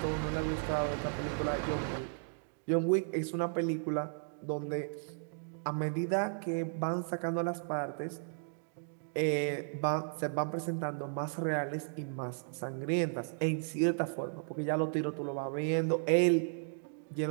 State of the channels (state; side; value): silent; left; digital silence